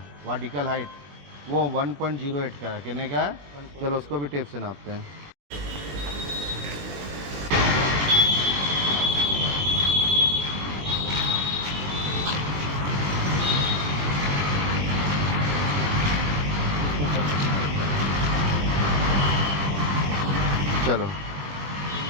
वर्टिकल हाइट वो 1.08 का है, कितने का है? चलो उसको भी टेप से नापते हैं। चलो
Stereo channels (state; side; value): late; left; 20 ms